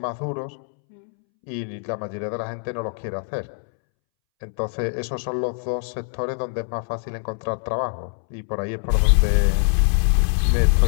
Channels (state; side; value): silent; right; 63 dB below the other